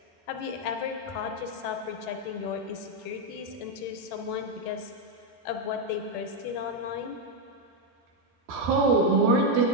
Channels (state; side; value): normal; both; correlation 0.04